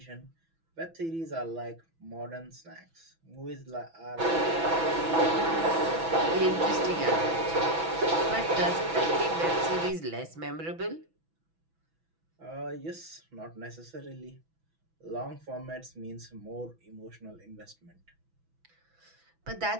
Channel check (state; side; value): late; left; 6.1 ms